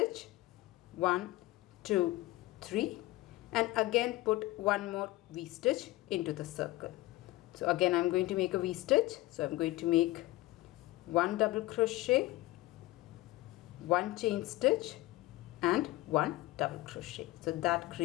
1, 2, 3, and again put 1 more V-stitch into the circle. So again I'm going to make a V-stitch. So I'm going to make 1 double crochet, 1 chain stitch and 1 double crochet. So that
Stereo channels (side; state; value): right; quieter; 18.8 dB